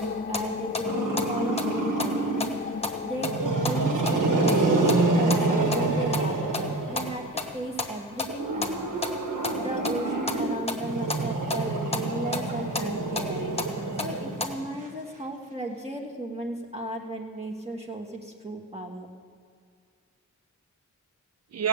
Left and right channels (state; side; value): normal; both; correlation 0.29